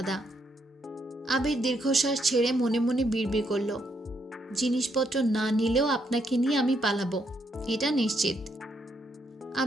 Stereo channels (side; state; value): both; normal; correlation 0.76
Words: আবির দীর্ঘশ্বাস ছেড়ে মনে মনে বিড়বিড় করল, জিনিসপত্র না নিলেও আপনাকে নিয়ে আমি পালাবো, এটা নিশ্চিত।